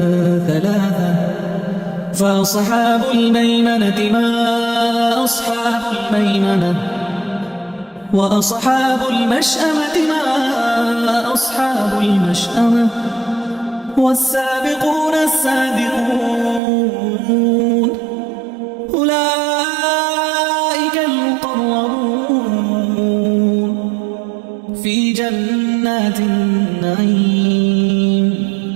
ثلاثة فأصحاب الميمنة ما أصحاب الميمنة وأصحاب المشأمة ما أصحاب المشأمة والسابقون السابقون أولئك المقربون في جنات النعيم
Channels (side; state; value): left; drops out; at 16.6 s